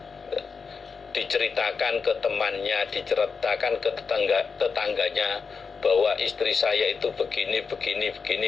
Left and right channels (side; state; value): right; quieter; 5.3 dB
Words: diceritakan ke temannya, diceritakan ke tetangganya bahwa istri saya itu begini